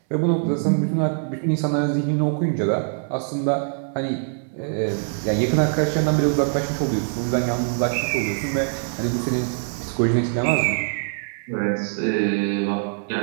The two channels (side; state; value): left; silent; digital silence